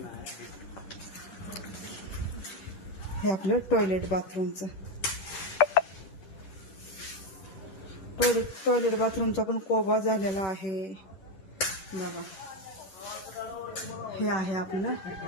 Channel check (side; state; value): right; late; 10 ms